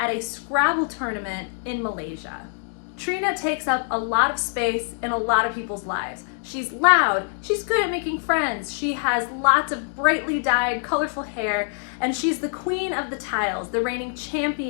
a Scrabble tournament in Malaysia. Trina takes up a lot of space in a lot of people's lives. She's loud, she's good at making friends, she has lots of brightly dyed, colorful hair, and she's the queen of the tiles, the reigning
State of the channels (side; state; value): right; silent; 62 dB below the other